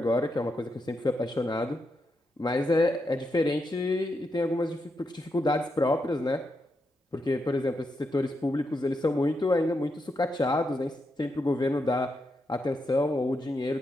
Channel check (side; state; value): both; normal; correlation 0.84